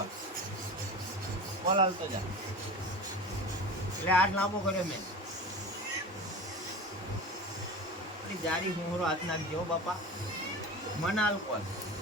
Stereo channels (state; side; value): normal; both; correlation 0.32